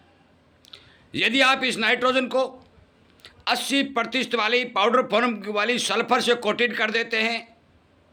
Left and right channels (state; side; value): identical; both; correlation 1.00